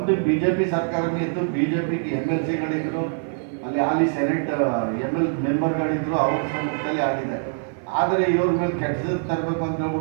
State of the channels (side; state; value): left; silent; 56 dB below the other